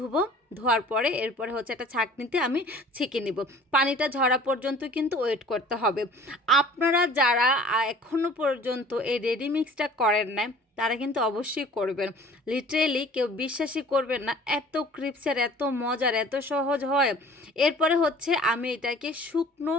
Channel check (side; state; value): both; normal; correlation 0.48